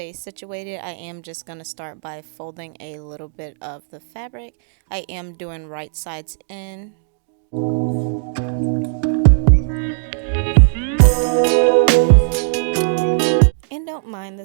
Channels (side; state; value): left; silent; digital silence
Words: situated, I am just going to start by folding a little bit of the fabric. I am doing right sides in. And don't mind